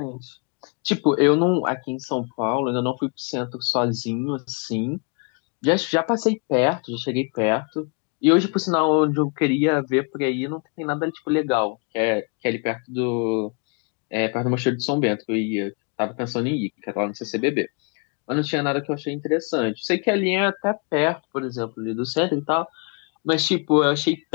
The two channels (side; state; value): right; quieter; 35.2 dB